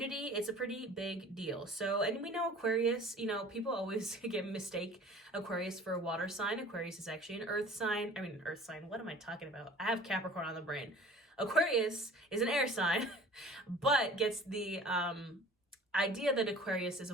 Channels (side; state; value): both; normal; correlation 0.45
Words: It's a pretty big deal. So, and we know Aquarius, you know, people always mistake Aquarius for a water sign. Aquarius is actually an earth sign. What am I talking about? I have Capricorn on the brain. Aquarius is an air sign, but gets the idea that Aquarius is